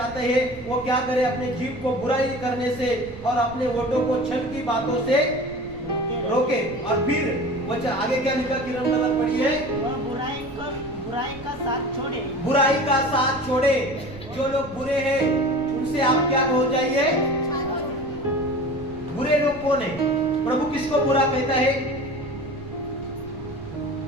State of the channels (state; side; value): noise; right; rumble, 17 dB below the sound